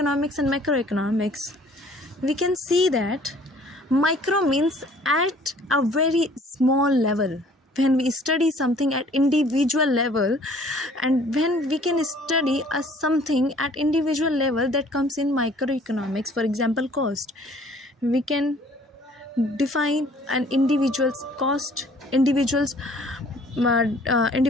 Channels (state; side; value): normal; both; correlation 0.55